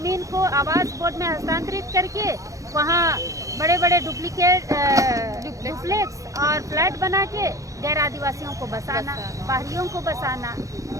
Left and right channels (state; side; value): late; left; 0.16 ms